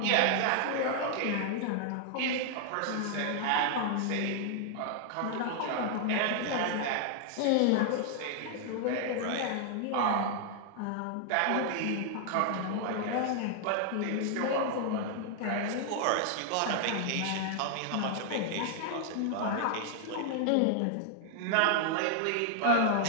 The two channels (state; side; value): different; both; correlation 0.00